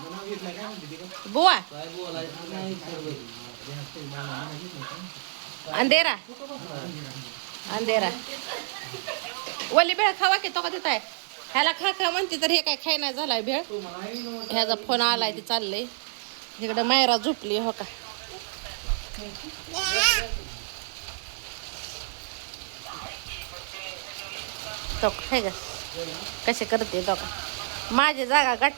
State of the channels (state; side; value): silent; left; 59 dB below the other